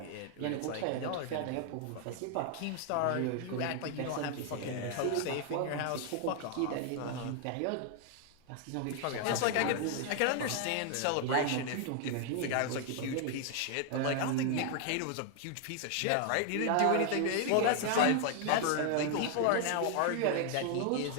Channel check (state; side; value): different; both; correlation 0.00